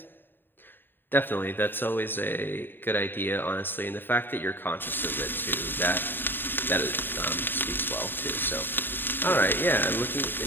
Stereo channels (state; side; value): late; right; 0.096 ms